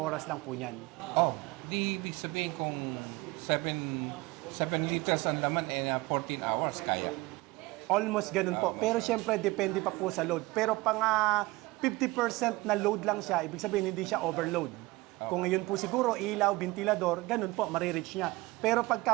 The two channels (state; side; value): quieter; left; 21.1 dB